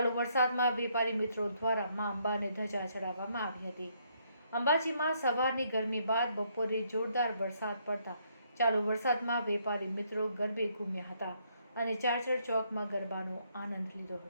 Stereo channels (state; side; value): inverted; both; correlation -0.71